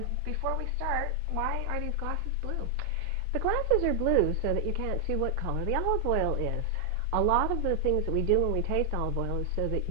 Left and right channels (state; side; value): different; both; correlation 0.00